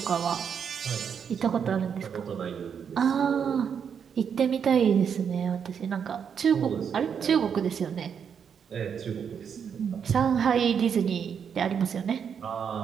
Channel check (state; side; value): quieter; left; 7.3 dB